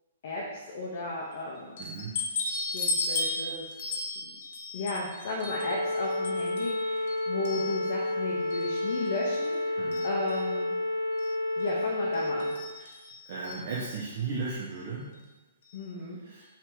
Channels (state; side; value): inverted; both; correlation -0.68